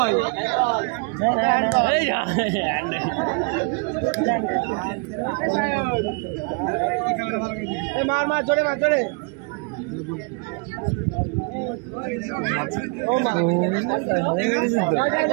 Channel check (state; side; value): quieter; left; 32.6 dB